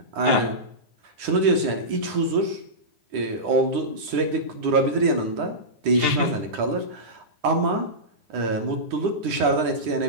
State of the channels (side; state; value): left; late; 9.9 ms